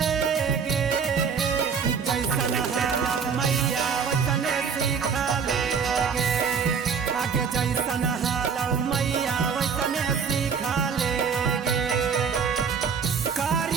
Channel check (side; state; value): left; quieter; 6.2 dB